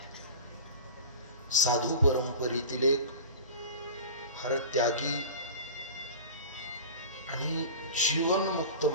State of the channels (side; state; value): both; inverted; correlation -0.35